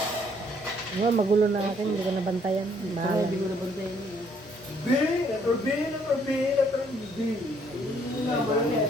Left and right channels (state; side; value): normal; both; correlation 0.66